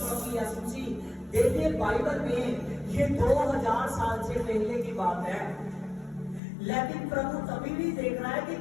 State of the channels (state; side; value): drops out; right; at 6.4 s